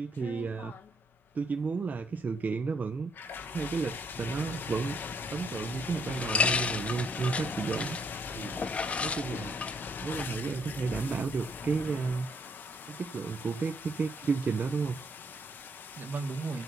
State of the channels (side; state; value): both; normal; correlation 0.71